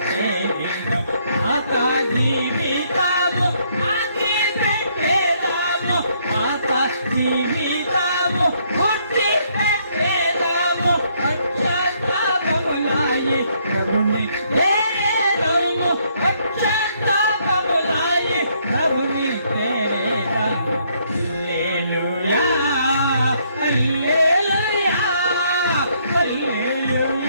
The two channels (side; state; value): both; inverted; correlation -0.69